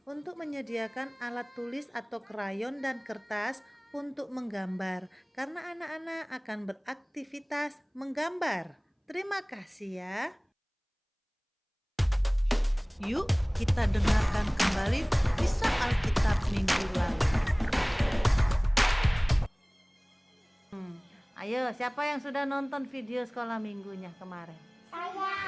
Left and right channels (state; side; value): identical; both; correlation 1.00